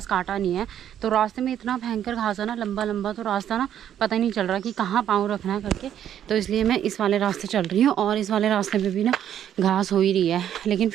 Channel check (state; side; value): quieter; left; 10.2 dB